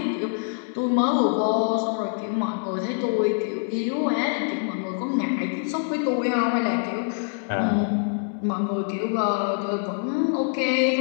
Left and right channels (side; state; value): right; silent; digital silence